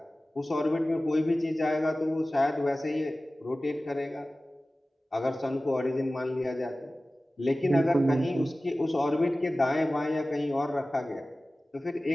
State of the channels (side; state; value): both; normal; correlation 0.97